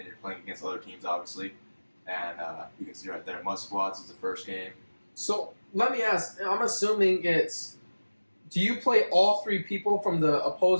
you're playing against other teams, obviously. And you can see right there, Mud Squads is the first game. So let me ask. I'm assuming it's. Do you play all 3 people from the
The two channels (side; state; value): both; inverted; correlation -1.00